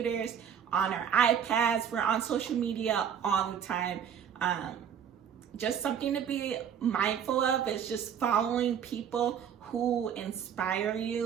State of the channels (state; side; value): quieter; left; 8.3 dB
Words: on our iPads, we're on social media all the time. Just something to be mindful of is just following people who inspire